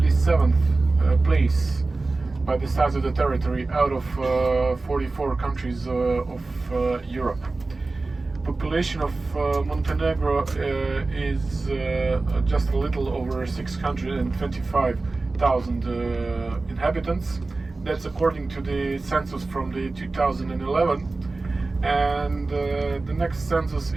place by the size of the territory out of 44 countries of Europe. Population of Montenegro is just a little over 625,000 inhabitants. That's according to the census from the 2011, and the next census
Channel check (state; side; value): quieter; left; 3.5 dB